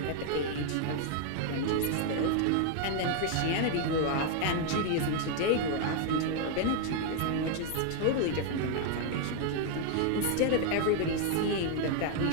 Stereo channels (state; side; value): different; both; correlation 0.00